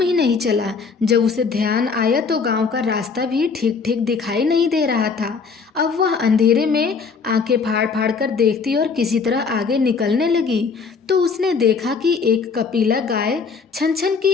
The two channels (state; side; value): quieter; right; 5.2 dB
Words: ही नहीं चला। जब उसे ध्यान आया तो गांव का रास्ता भी ठीक ठीक दिखाई नहीं दे रहा था। अब वह अंधेरे में आंखें फाड़ फाड़ कर देखती और किसी तरह आगे निकलने लगी तो उसने देखा कि एक कपिला गाय छन छन